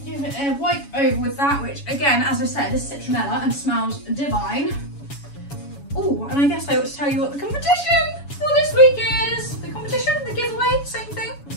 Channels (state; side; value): late; right; 7.1 ms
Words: Give it a wipe over with that, which again, as I said, is citronella and smells divine. Oh, and I guess I ought to tell you what the competition for this week is. The competition, the giveaway, same thing.